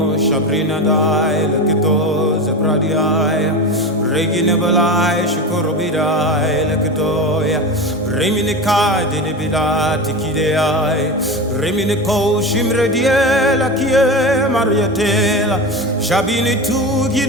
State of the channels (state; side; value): normal; both; correlation 0.24